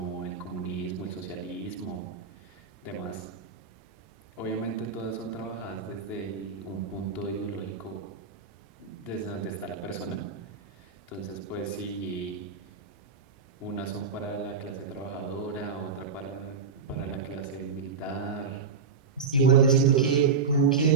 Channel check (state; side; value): quieter; left; 5.4 dB